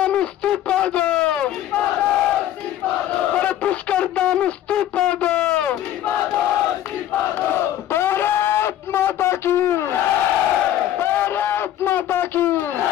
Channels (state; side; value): quieter; right; 12.1 dB